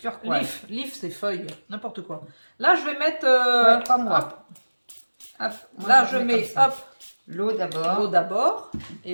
Leaf c'est feuille, n'importe quoi. Là, je vais mettre... Ouais, pas moi. Hop, Hop, moi, là, je mets mets comme ça. hop, L'eau d'abord. l'eau d'abord.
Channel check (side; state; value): both; inverted; correlation -1.00